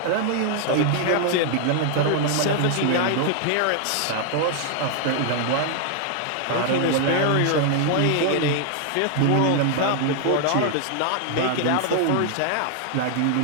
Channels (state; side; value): different; both; correlation 0.00